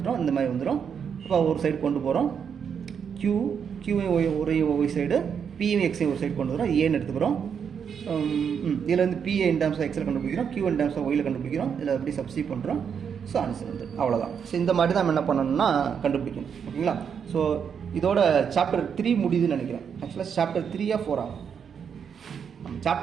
இந்த மாதிரி வந்துடும். அப்போ ஒரு சைடு கொண்டு போகிறோம், கியூவை ஒய் சைடு, பியும் எக்ஸையும் ஒரு சைடு கொண்டு வரோம், ஏன்னு எடுத்துக்கிறோம். இதில் வந்து பிஏ இன் டேர்ம்ஸ் ஆஃப் எக்ஸில் கண்டுபிடிக்கிறோம், கியூ இன் டேர்ம்ஸ் ஆஃப் ஒயில் கண்டுபிடிக்கிறோம். இதில் எப்படி சப்ஸ்டிட்யூட் பண்ணுறோம். ஸோ ஆன்சர் வந்து அவ்வளோதான். ஸோ இந்த மாதிரி தான் நம்ம என்ன பண்ணணும்னா கண்டுபிடிக்கணும். ஓகேங்களா, ஸோ இதோட சாப்டர் 3 முடியுதுன்னு நினைக்கிறேன். ஆக்சுவலாக சாப்டர் 3 4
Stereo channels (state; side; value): quieter; left; 7.2 dB